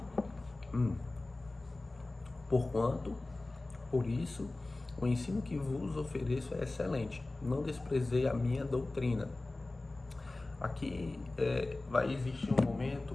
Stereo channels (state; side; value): quieter; right; 3.0 dB